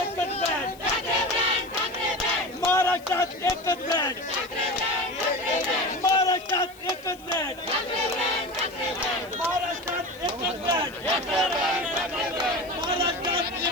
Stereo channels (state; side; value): noise; left; hiss, 24 dB below the sound